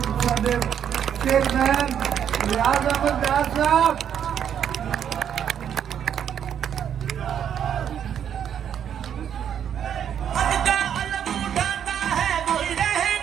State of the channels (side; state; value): left; quieter; 8.9 dB